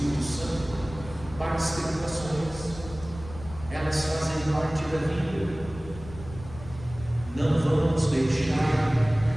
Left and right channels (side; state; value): left; noise; rumble, 15 dB below the sound